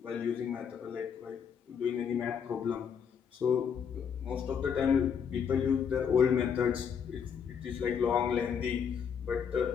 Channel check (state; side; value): quieter; right; 7.3 dB